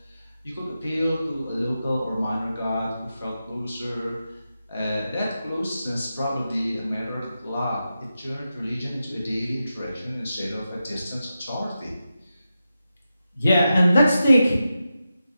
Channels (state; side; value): inverted; both; correlation -0.90